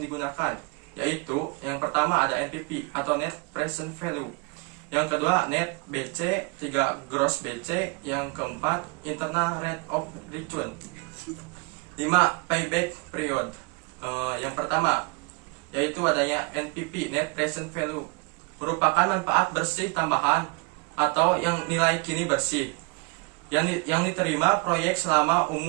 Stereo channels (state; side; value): quieter; left; 30.6 dB